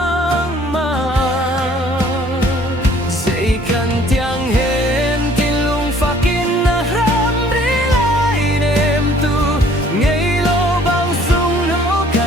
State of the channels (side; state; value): both; normal; correlation 0.57